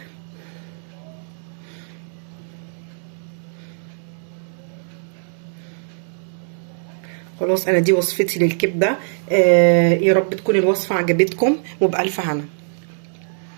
خلاص انا دي وصفتي للكبده. يا رب تكون الوصفه عجبتكم وبألف هنا.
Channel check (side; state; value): left; silent; digital silence